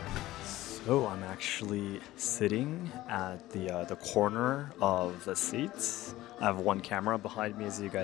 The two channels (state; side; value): quieter; right; 16.4 dB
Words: So I'm actually sitting at the corner of the seats. I have one camera behind me, as you